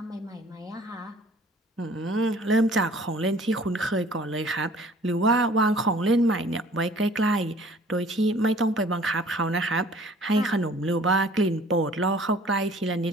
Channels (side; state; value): both; normal; correlation 0.52